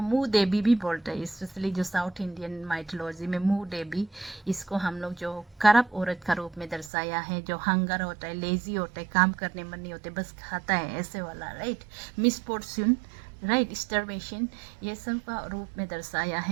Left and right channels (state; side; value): drops out; left; at 6.9 s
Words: मुँह देवी भी बोलते हैं, स्पेशली जो साउथ इंडियन माइथोलॉजी में मुँह देवी, इसको हम लोग जो करप औरत का रूप में दर्शाया है, जो हंगर होता है, लेजी होता है, काम करने मन नहीं होते, बस खाता है ऐसे वाला, राइट, मिसफॉर्च्यून, राइट, स्टारवेशन, ये सब का रूप में दर्शाया